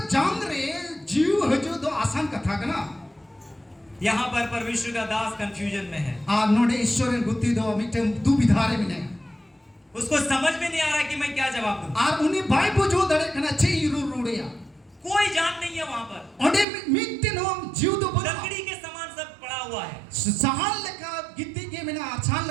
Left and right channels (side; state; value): left; drops out; at 16.7 s